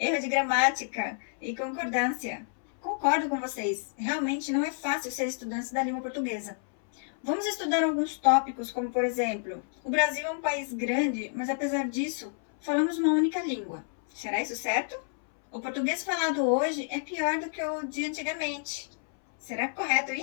de gramática e concordância. Concordo com vocês, realmente não é fácil ser estudante da língua portuguesa. Vamos estudar alguns tópicos, como por exemplo, o Brasil é um país grande, mas apesar disso, falamos uma única língua. Será isso certo? O português falado hoje é pior do que o de antigamente. Será correto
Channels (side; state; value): right; silent; 58 dB below the other